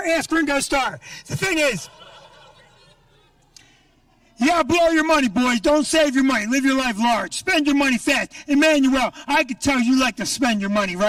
Ask Ringo Starr. The thing is, you gotta blow your money, boys. Don't save your money. Live your life large. Spend your money fast. Emmanuel, I could tell you like to spend your money,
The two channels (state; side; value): identical; both; correlation 1.00